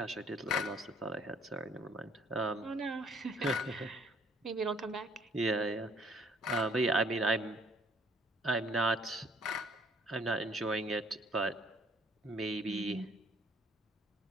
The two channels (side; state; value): both; normal; correlation 0.61